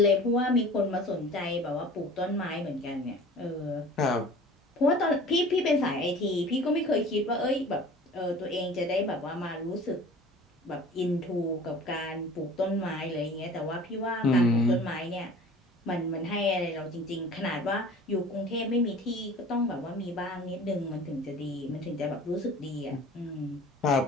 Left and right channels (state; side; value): normal; both; correlation 0.44